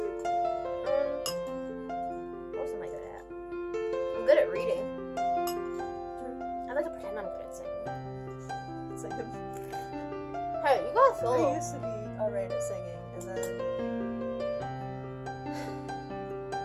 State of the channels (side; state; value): both; identical; correlation 1.00